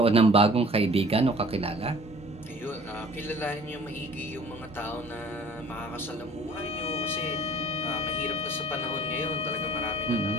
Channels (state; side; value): normal; both; correlation 0.51